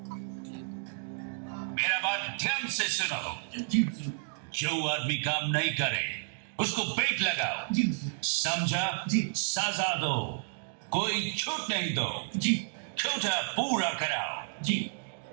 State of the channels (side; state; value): left; silent; digital silence